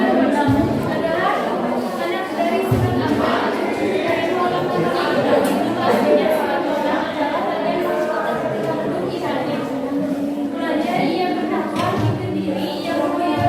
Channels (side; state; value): both; identical; correlation 1.00